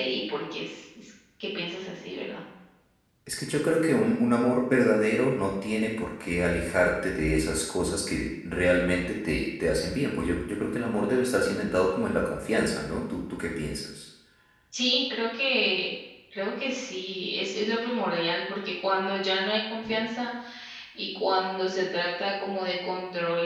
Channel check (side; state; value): both; identical; correlation 1.00